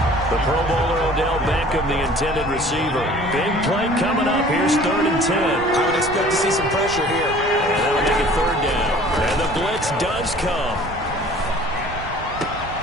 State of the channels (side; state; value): right; noise; rumble, 12 dB below the sound